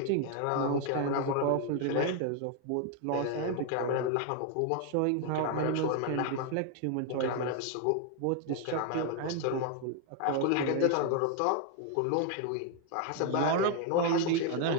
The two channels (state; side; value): different; both; correlation 0.00